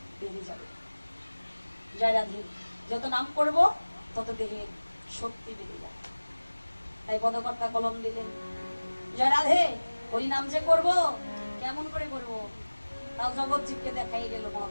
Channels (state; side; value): inverted; both; correlation -1.00